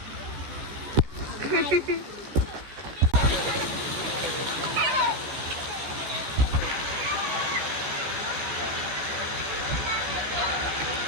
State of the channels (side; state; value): left; late; 15 ms